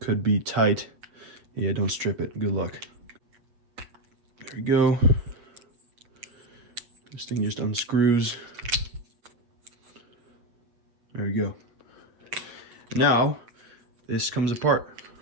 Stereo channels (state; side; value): late; left; 8.2 ms